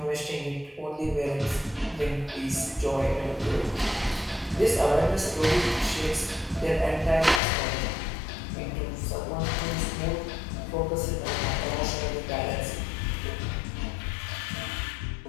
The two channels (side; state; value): right; drops out; at 7.4 s